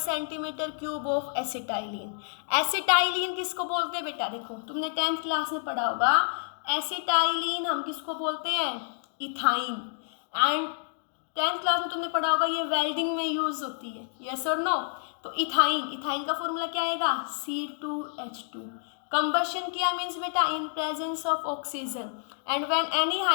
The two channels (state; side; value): silent; right; digital silence